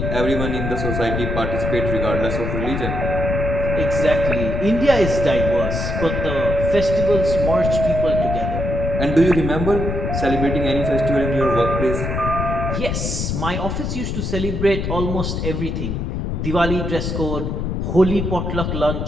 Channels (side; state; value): left; noise; rumble, 2 dB below the sound